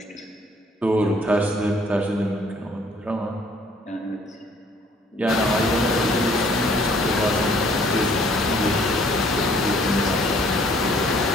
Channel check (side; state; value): both; normal; correlation 0.60